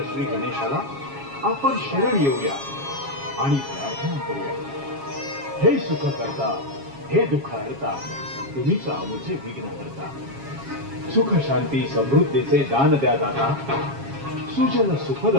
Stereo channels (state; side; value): late; left; 7.3 ms